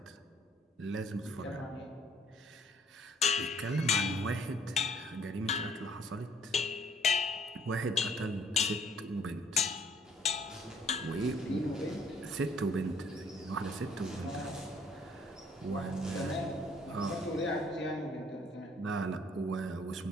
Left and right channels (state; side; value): normal; both; correlation 0.61